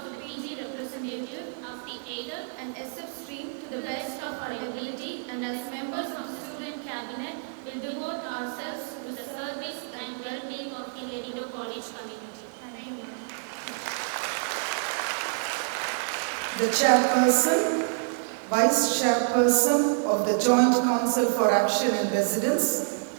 the PG representative of the aided and SF stream to the best of our ability, and as members of the Student Cabinet will devote ourselves to the service and well-being of the Lady Doak College community. Thank you, ma'am. The Chairperson, Vice Chairperson of the Joint Council for Action in Residence,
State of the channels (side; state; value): left; silent; digital silence